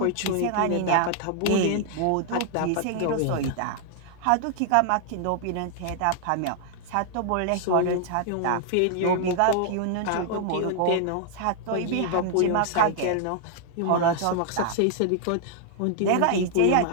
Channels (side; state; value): both; different; correlation 0.00